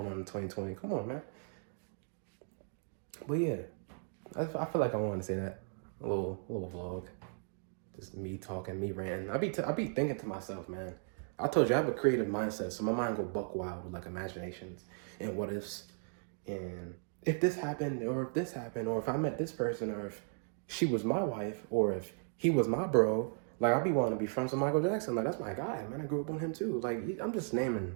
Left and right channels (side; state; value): left; silent; 54 dB below the other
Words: on in 2020. Come on, man. But yeah, I feel like I want to say that. A little vlog. Just me talking, me ranting. I be thinking to myself, man. I told you I have a creative mindset, so my mind go buck wild with like imaginations and what ifs. And if this happened, or if this happened, or if I met this person, or if she was my wife, or if he was my bro, like, I'd be wanting to be friends with Michael Jackson. Like, that's my guy, man. I grew up on him too. Like, I'm just naming.